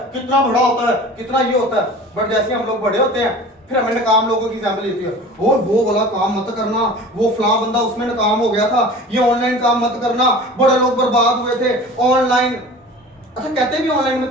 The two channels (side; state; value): both; normal; correlation 0.40